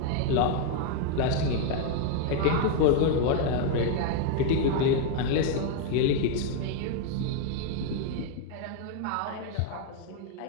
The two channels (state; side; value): different; both; correlation 0.00